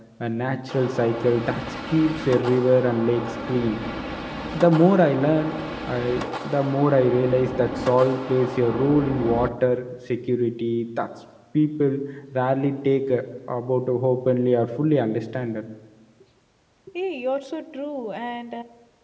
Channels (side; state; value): both; identical; correlation 1.00